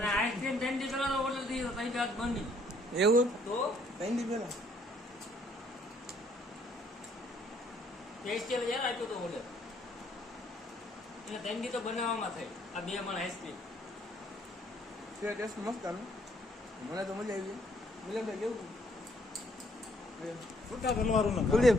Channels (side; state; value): both; normal; correlation 0.66